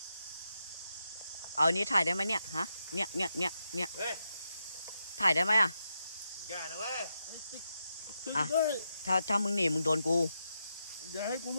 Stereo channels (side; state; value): both; inverted; correlation -0.85